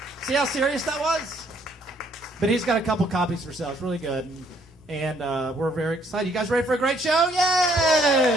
See how serious that was? But he's got a couple copies for sale. It's really good. And we're very excited. You guys ready for a great show?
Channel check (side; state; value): both; normal; correlation 0.66